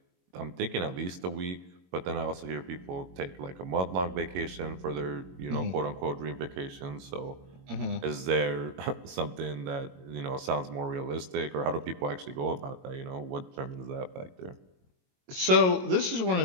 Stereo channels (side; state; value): left; late; 22 ms